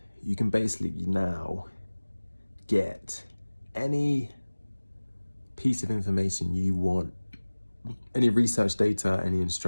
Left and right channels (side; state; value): both; inverted; correlation -1.00